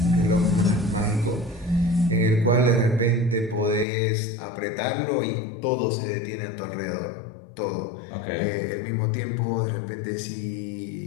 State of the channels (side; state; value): right; drops out; at 3.9 s